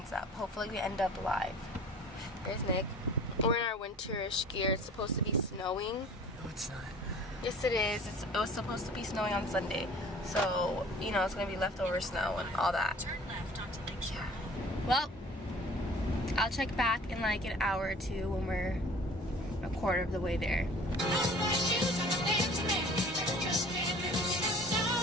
up. Hopefully we end up alive. There's Nick. We're in our winterish gear. It's supposed to be snowing. No, it's not. Yes, it is. It was supposed to be snowing on Sunday. So, you know, it's going to be leftover snow and all that. Yeah. Well, I'll check back in like an hour or two when we're a quarter of the way there.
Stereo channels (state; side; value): normal; both; correlation 0.47